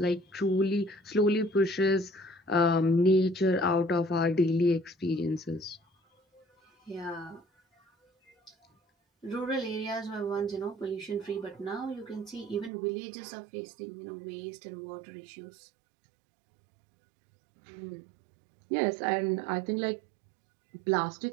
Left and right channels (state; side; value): drops out; left; at 12.7 s